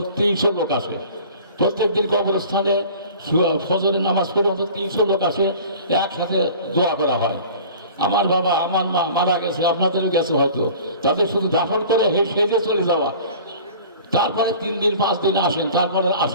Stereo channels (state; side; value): inverted; both; correlation -0.44